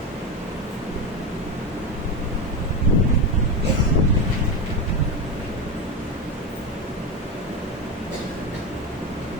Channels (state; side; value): normal; both; correlation 0.16